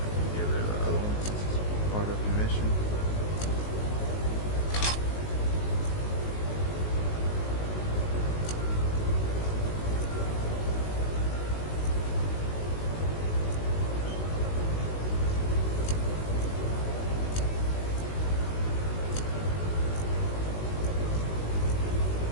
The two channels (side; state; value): right; late; 19 ms